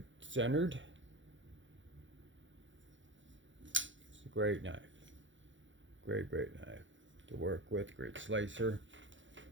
centered. It's a great knife. Great knife to work with. Great slicer.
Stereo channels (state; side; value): late; left; 0.55 ms